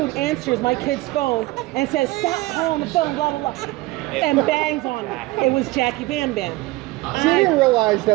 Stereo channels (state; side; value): quieter; left; 20.0 dB